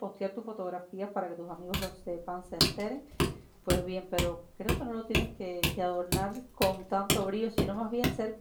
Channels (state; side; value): identical; both; correlation 1.00